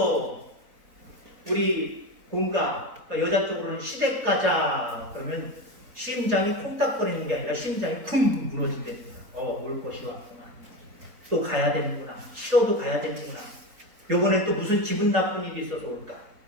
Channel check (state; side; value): late; left; 4.0 ms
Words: 우리 본가 여자 쪽으로는 시댁 가자 그러면 심장이 쿵닥거리는 게 아니라 심장이 쿵 무너지게 올 것이 왔구나. 또 가야 되는구나. 싫어도 가야 되는구나. 요번에 또 무슨 기분 나쁜 일이 있어서 올까?